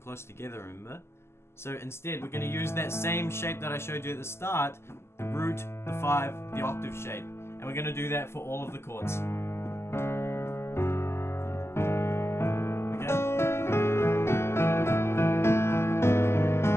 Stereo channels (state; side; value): late; right; 0.12 ms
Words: together, remember? So instead, we're going to use that same shape that I showed you at the start, the root, the 5, the octave shape. And we're going to do that for all of the chords.